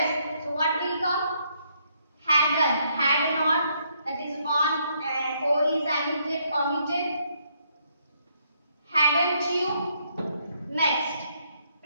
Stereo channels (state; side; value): inverted; both; correlation -0.72